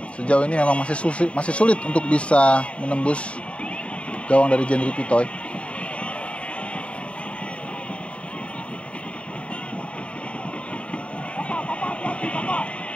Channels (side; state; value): right; late; 0.061 ms